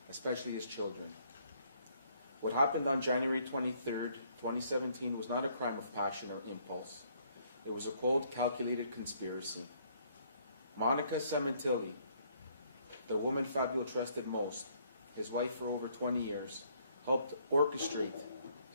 especially his children. What happened on January 23rd, 2017 was not a crime of passion or impulse. It was a cold, calculated conspiracy. Monica Sementilli, the woman Fabio trusted most, his wife for over 20 years, helped orchestrate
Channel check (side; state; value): both; inverted; correlation -0.66